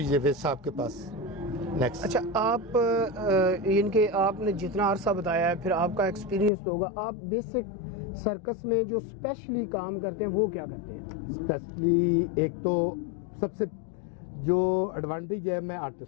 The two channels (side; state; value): right; drops out; at 6.5 s